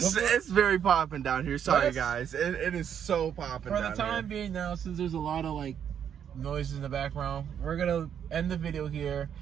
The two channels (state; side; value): quieter; left; 8.6 dB